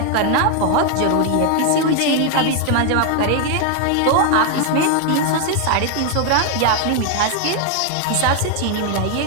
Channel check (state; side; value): different; both; correlation 0.00